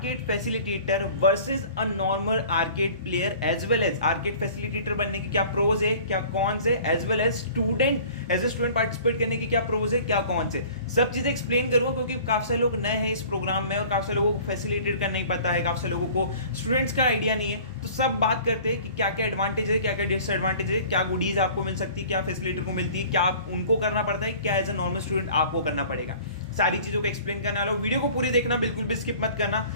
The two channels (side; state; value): both; inverted; correlation -0.47